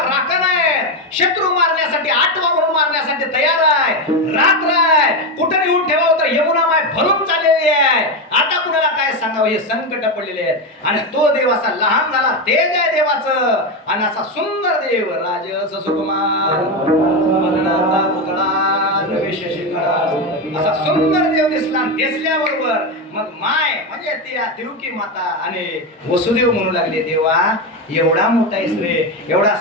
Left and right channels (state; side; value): normal; both; correlation 0.12